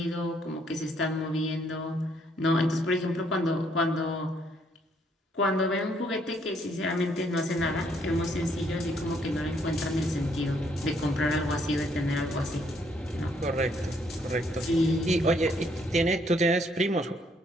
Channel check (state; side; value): normal; both; correlation 0.69